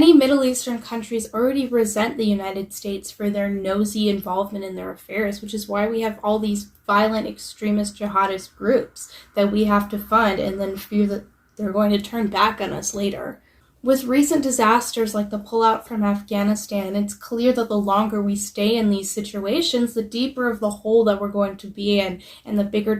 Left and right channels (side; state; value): both; identical; correlation 1.00